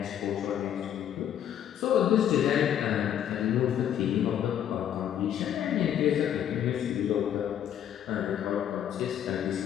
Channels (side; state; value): right; quieter; 10.1 dB